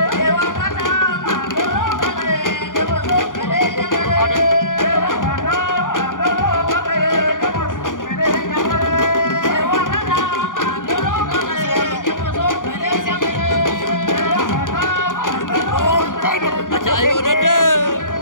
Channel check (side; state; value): right; late; 0.88 ms